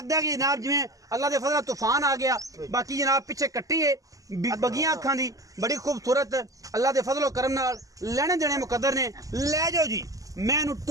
है कि जनाब जिवें अल्लाह दे फजल तूफान आ गया। बाकी जनाब पिछे कट्टी है बगियां अखां दी बड़ी खूबसूरत अल्लाह दे फजलो करम नाल लेने देने मुकद्दर ने। लै जाओ जी मैनू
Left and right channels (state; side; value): late; left; 0.17 ms